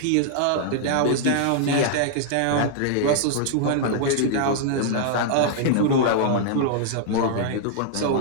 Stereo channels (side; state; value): both; different; correlation -0.01